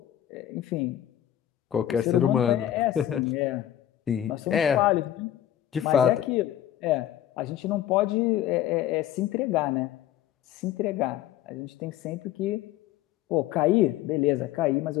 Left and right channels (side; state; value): right; quieter; 11.9 dB